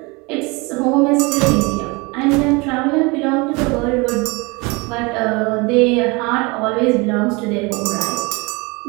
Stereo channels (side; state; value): left; quieter; 26.7 dB